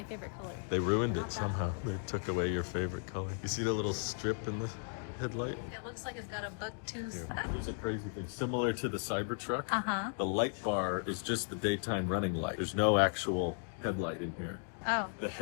favorite color. They ruined it somehow. They took away your favorite color. You see the little strip in the headlight? It looks like it's got a buck tooth. There's a crazy thing. Similar to the Cybertruck, Uh-huh. the light bar is just the daytime running light. There's no actual headlight in here. Oh. The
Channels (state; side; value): silent; right; 54 dB below the other